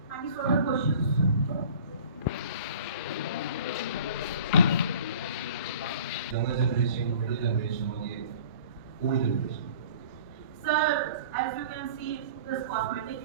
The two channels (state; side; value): inverted; both; correlation -0.45